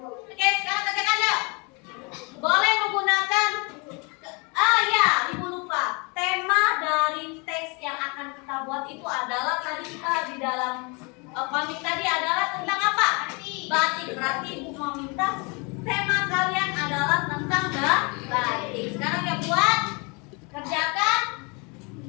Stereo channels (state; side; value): quieter; right; 31.0 dB